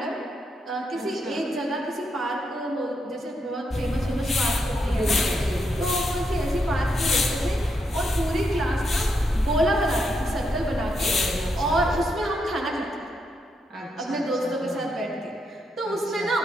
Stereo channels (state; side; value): normal; both; correlation 0.80